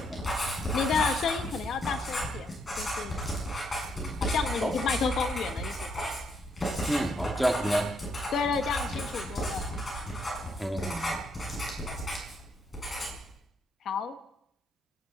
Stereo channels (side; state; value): both; normal; correlation 0.74